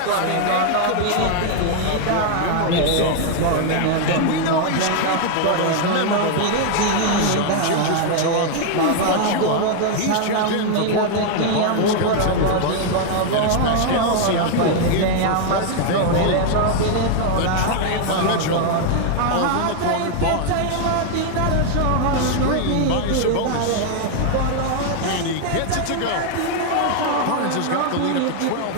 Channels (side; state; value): both; different; correlation 0.00